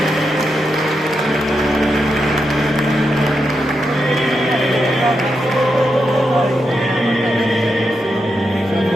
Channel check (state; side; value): normal; both; correlation 0.85